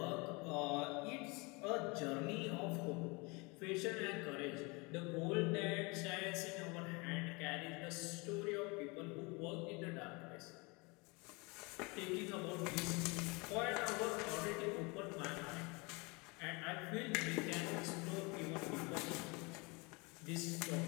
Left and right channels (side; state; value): right; quieter; 27.9 dB